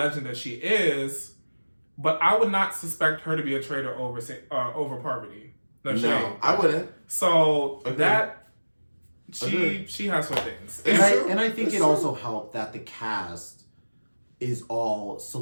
that she is, but I would not suspect her to be a traitor over Parvati. No, I wouldn't. So that she has her things, and I think it also helped that the cast is all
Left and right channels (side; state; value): both; inverted; correlation -1.00